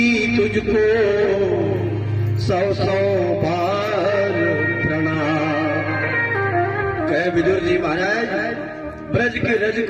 तुझको सौ सौ बार प्रणाम। कहे विदुर जी महाराज, ब्रज के रज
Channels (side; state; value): both; identical; correlation 1.00